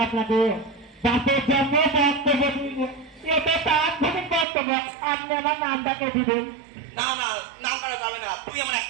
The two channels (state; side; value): drops out; left; at 4.5 s